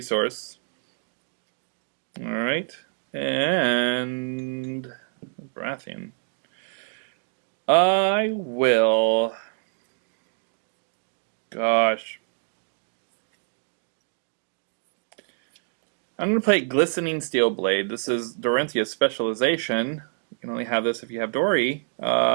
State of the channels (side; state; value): left; silent; digital silence